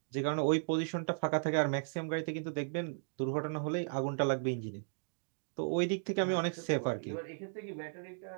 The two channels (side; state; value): left; silent; digital silence